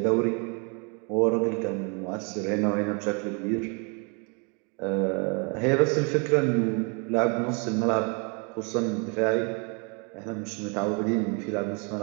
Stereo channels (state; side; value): quieter; left; 34.8 dB